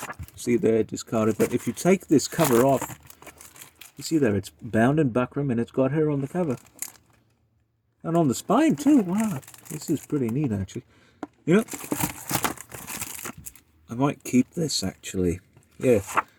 see there discarded. But if you take this cover off, you see there, it's bound in buckram and it's got her on the cover. And on the spine too, wow. This is pretty neat actually. You know, I might keep this actually. Yeah,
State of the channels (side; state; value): both; identical; correlation 1.00